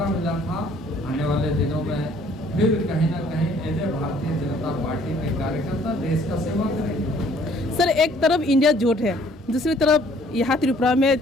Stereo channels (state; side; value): normal; both; correlation 0.59